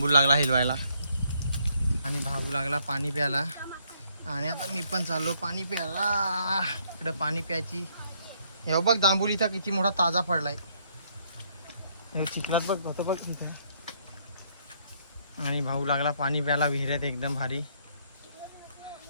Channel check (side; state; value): both; inverted; correlation -0.70